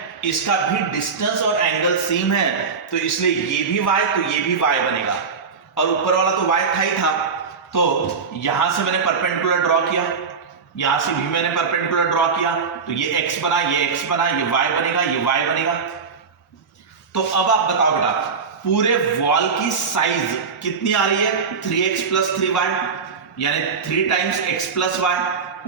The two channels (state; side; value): quieter; left; 5.4 dB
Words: इसका भी डिस्टेंस और एंगल सेम है, तो इसलिए ये भी y तो ये भी y बनेगा। और ऊपर वाला तो y था ही था, तो यहां से मैंने परपेंडिकुलर ड्रॉ किया, यहां से भी मैंने परपेंडिकुलर ड्रॉ किया, तो ये x बना, ये x बना, ये y बनेगा, ये y बनेगा। तो अब आप बताओ बेटा, पूरे वॉल की साइज कितनी आ रही है? 3x प्लस 3y, यानी 3 टाइम्स x प्लस y।